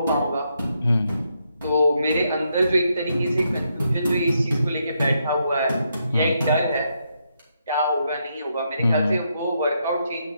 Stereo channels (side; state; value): both; inverted; correlation -0.79